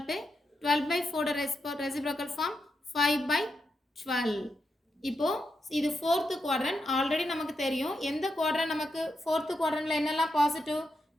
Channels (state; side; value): normal; both; correlation 0.85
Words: to 12 by 4 reciprocal form 5 by 12. இப்போ இது fourth quadrant. Already நமக்கு தெரியும் எந்த quadrant நமக்கு ஃபோர்த்து குவாட்ரண்ட்டில் என்னெல்லாம் பாசிட்டிவ்